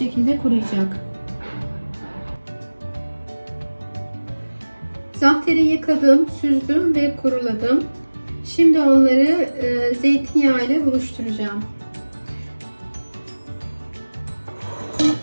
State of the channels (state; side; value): inverted; both; correlation -1.00